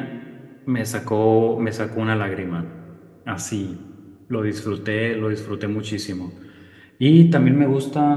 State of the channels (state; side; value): identical; both; correlation 1.00